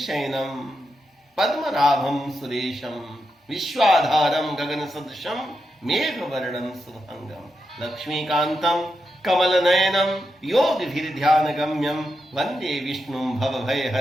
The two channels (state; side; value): normal; both; correlation 0.86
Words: पद्मनाभम सुरेशम विश्वाधारम गगन सदृशम मेघ वर्णम शुभंगम लक्ष्मीकांतम कमल नयनम योगिभिर ध्यान गम्यम वंदे विष्णु भव